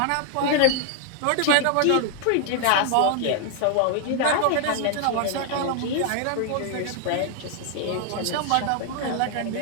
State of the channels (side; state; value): both; different; correlation 0.00